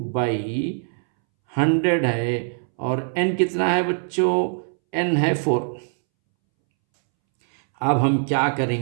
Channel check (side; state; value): left; silent; 64 dB below the other